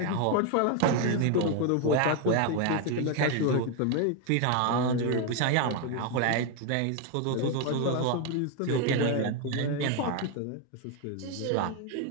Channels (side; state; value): both; different; correlation 0.01